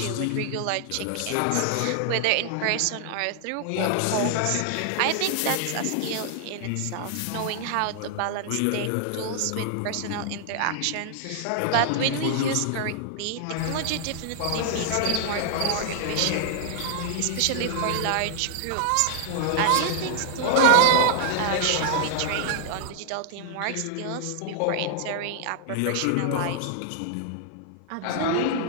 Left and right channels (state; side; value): different; both; correlation -0.01